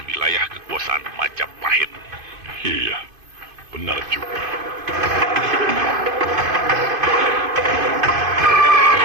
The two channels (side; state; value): left; late; 2.5 ms